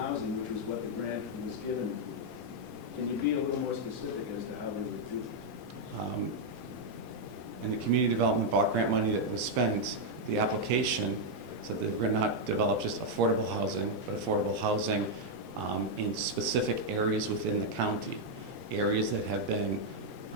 which was what the grant was given for. Can you be a little more specific as to how they were duped? In the community development block grant money that was spent, the application said that we're going to not develop just affordable housing, but affordable housing in specific areas within the county. Areas that have been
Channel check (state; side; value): normal; both; correlation -0.01